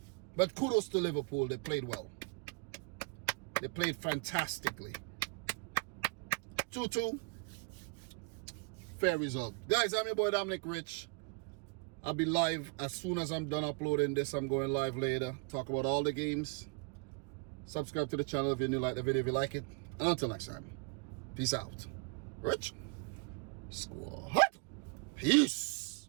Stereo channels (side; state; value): left; quieter; 30.2 dB